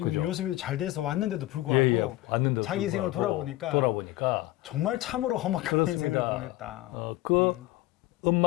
그죠. 요셉이 잘 돼서 왔는데도 불구하고 예, 왔는데도 자기 인생을 불구하고 돌아보니까 정말 참으로 험악한 인생을 보냈다.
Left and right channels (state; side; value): quieter; right; 17.2 dB